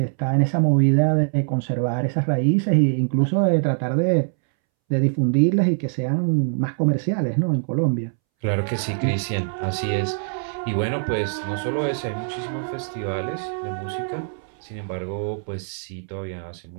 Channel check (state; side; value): silent; left; 63 dB below the other